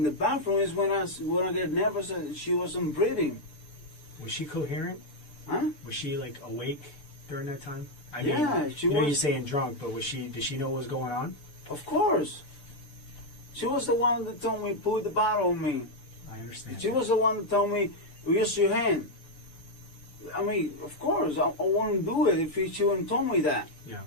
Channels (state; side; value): late; right; 6.8 ms